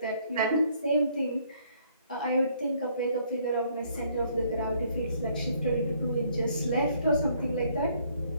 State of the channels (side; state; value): both; inverted; correlation -0.65